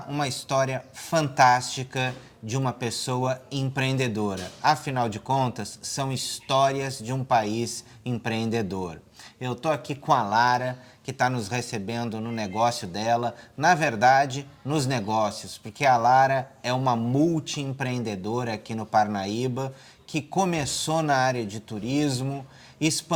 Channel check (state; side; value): identical; both; correlation 1.00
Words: uma história fantástica de uma pessoa empreendedora. Afinal de contas, são histórias de um país empreendedor. Eu estou aqui com a Lara, que está nos recebendo no negócio dela, na verdade, nos negócios, porque a Lara é uma multiempreendedora aqui no Parnaíba, que começou na área de turismo,